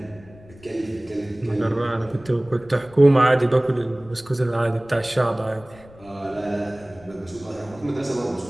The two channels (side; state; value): left; noise; rumble, 22 dB below the sound